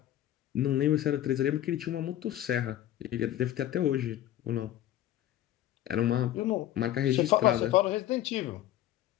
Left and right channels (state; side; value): quieter; right; 12.9 dB